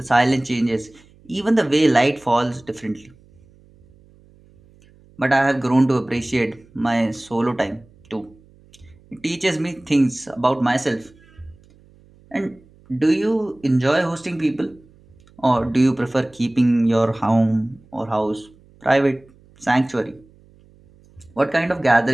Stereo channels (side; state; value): right; noise; hum, 28 dB below the sound